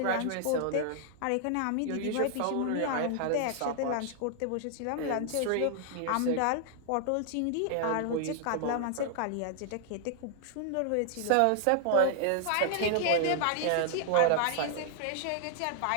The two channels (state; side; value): different; both; correlation -0.01